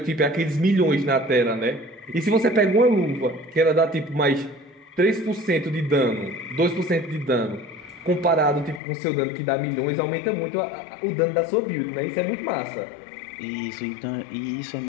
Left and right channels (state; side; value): drops out; right; at 8.8 s